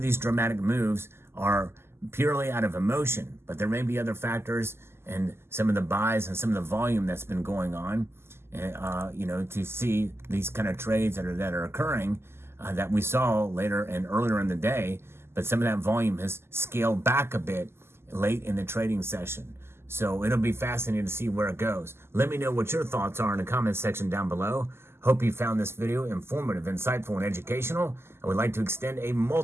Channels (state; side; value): late; left; 0.12 ms